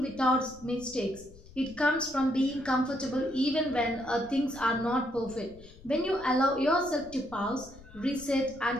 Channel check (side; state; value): left; noise; rumble, 21 dB below the sound